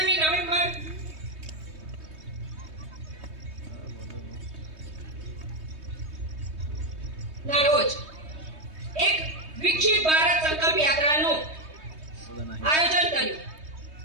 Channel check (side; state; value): left; late; 3.2 ms